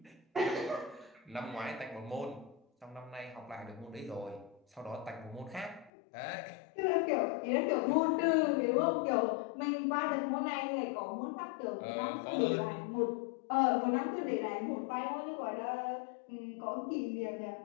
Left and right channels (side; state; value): right; drops out; at 5.9 s